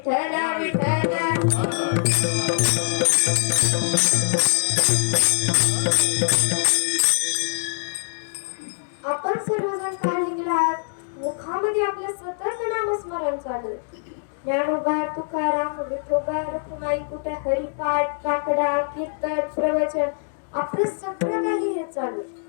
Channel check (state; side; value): silent; right; digital silence